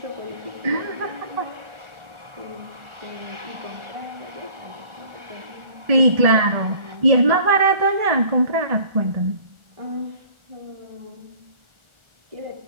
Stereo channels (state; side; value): late; left; 1.4 ms